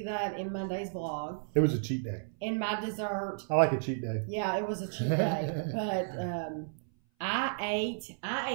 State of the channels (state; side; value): silent; left; 56 dB below the other